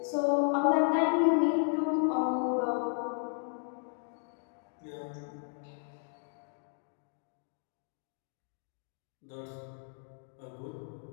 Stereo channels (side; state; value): right; silent; 55 dB below the other